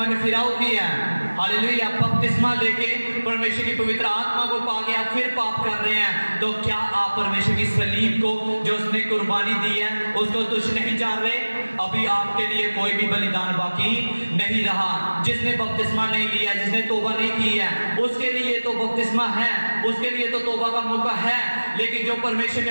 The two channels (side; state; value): both; inverted; correlation -1.00